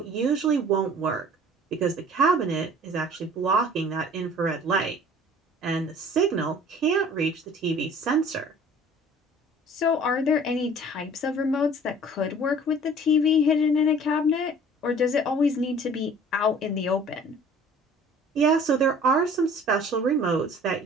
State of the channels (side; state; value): both; normal; correlation 0.49